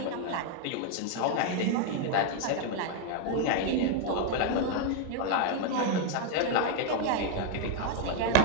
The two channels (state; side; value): different; both; correlation 0.00